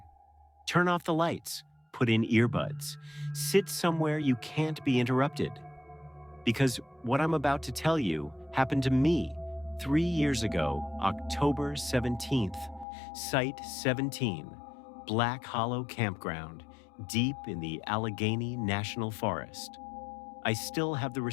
Turn off the lights, put in earbuds, sit somewhere you can't be interrupted. Because what I'm about to tell you happened to me 3 years ago, October 17th, Site 17, Black Hollow Campground, deep in the Allegheny National Forest. I still have the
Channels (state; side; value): drops out; right; at 12.9 s